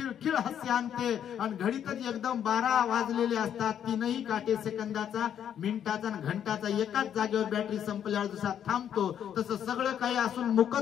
हास्य आणते, आणि घडीतच एकदम 12 वाजलेले असतात, 3ही काटे सेकंदाचा, मिनिटाचा आणि घंटाचा एकाच जागेवर बॅटरी संपल्यावर जसा थांबतो तसं सगळं काही असून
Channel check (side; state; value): right; quieter; 9.3 dB